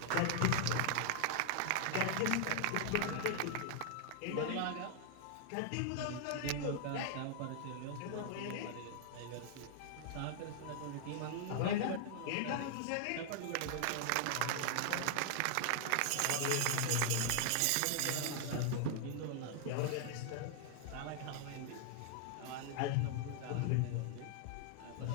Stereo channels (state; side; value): different; both; correlation -0.01